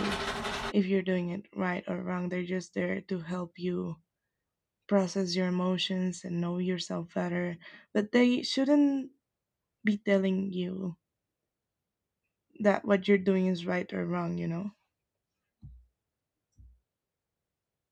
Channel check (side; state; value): both; identical; correlation 1.00